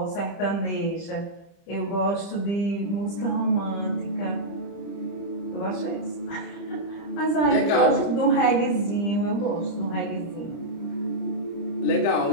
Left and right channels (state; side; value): late; right; 30 ms